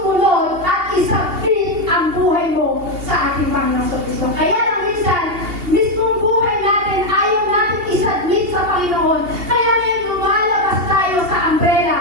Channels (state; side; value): late; left; 2.8 ms